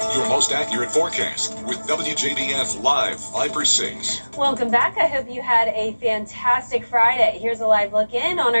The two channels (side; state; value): both; inverted; correlation -1.00